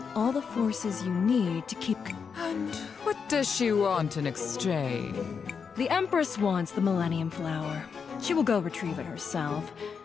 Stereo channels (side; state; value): right; quieter; 6.1 dB